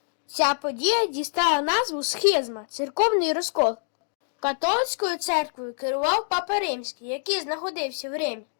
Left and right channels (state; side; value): silent; right; digital silence